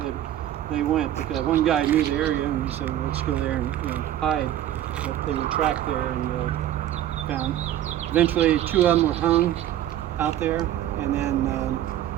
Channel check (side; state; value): left; quieter; 12.2 dB